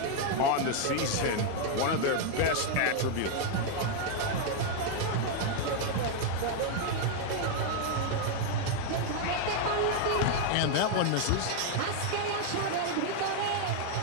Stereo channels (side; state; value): both; different; correlation 0.00